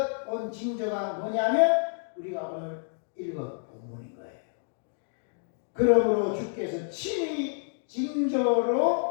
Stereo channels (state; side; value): silent; right; digital silence